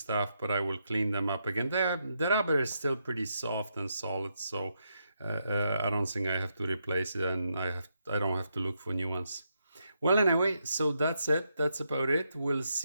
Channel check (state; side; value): inverted; both; correlation -0.81